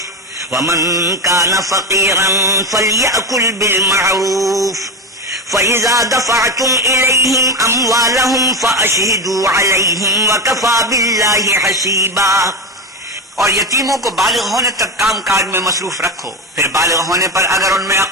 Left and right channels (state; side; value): normal; both; correlation 0.18